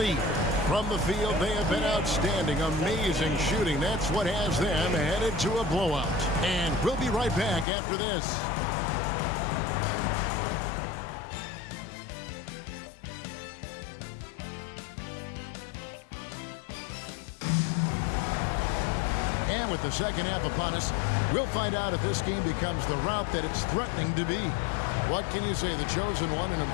From the field, they have been outstanding, amazing shooting. That's what has them headed to a blowout. And we'll be right back after this. And with the second half upon us, we'll find out if this game becomes the route that it's threatening to be. What can you say? The chosen one, an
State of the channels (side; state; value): right; drops out; at 7.7 s